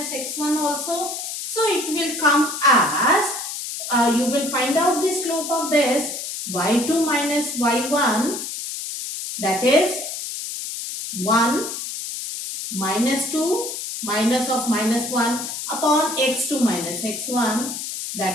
x1 also. So, it will come as, you will find out the slope of this y2 minus y1, that is 1 minus 2 minus of minus 1 upon x2 minus x1,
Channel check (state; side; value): noise; left; hiss, 6 dB below the sound